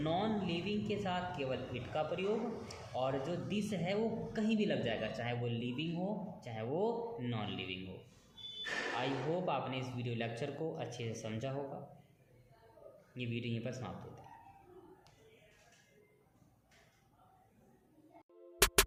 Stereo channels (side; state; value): both; identical; correlation 1.00